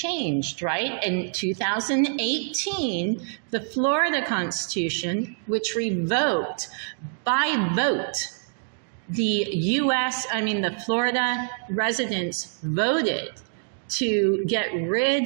right? In 2018, the Florida Constitution, which revoked by vote, the Florida residents voted to get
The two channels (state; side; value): silent; left; digital silence